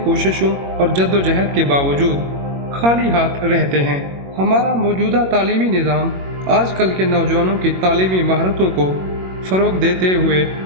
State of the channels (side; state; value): left; late; 21 ms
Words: कोशिशों और जद्दोजहद के बावजूद खाली हाथ रहते हैं। हमारा मौजूदा तालीमी निज़ाम आजकल के नौजवानों की तालीमी महारतों को फ़रोग़ देते हुए